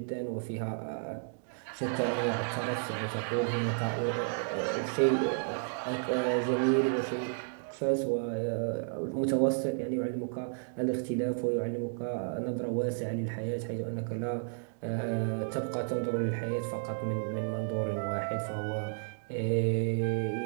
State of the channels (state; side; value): silent; left; digital silence